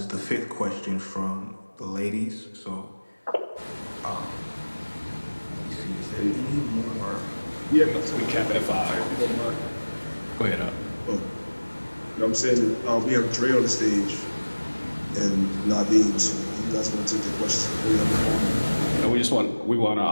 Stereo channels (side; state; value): both; inverted; correlation -1.00